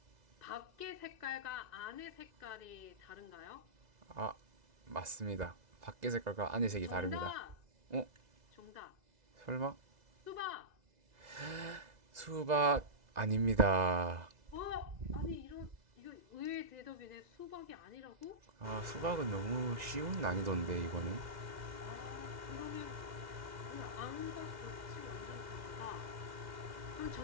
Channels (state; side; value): late; left; 2.0 ms